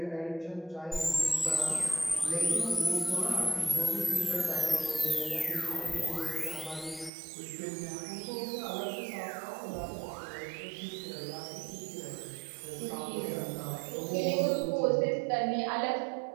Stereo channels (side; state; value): left; drops out; at 7.1 s